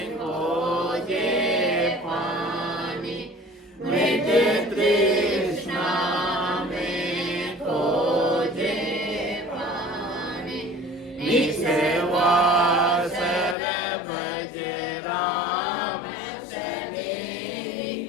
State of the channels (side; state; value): right; drops out; at 13.6 s